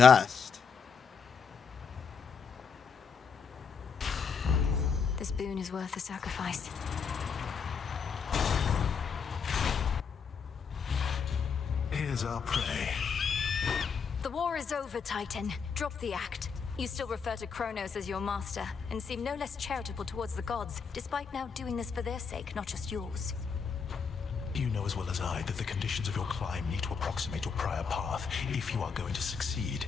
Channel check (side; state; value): right; quieter; 6.0 dB